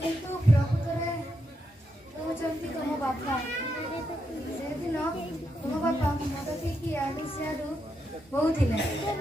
କିନ୍ତୁ ପ୍ରକୃତରେ ହେଉଛନ୍ତି ତମ ବାପା। ସେଦିନ ତମ ବାପା ମଦ ପିଇକି ଆଡୁ ସିଆଡୁ କହୁଥିଲେ,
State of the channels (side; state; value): both; normal; correlation 0.82